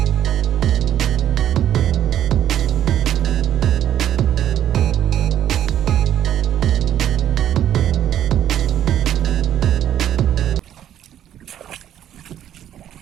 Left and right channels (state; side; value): quieter; left; 10.8 dB